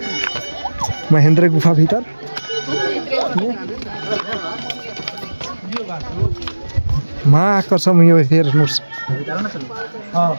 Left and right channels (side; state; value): both; inverted; correlation -1.00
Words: महेंद्र गुफा भीतर। माँ कसम यो हेर्नुस्